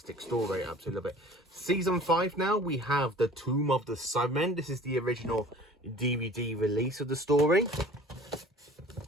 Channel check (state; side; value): normal; both; correlation 0.47